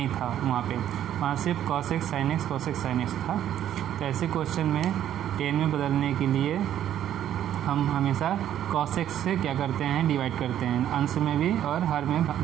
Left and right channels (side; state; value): left; quieter; 11.0 dB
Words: था, वहाँ सिर्फ cos x sin x था। तो ऐसे क्वेश्चन में 10 में बदलने के लिए हम हमेशा cos x से क्या करते हैं, डिवाइड करते हैं, अंश में भी और हर में,